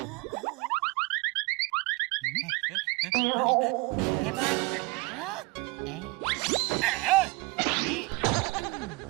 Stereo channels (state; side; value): quieter; left; 24.7 dB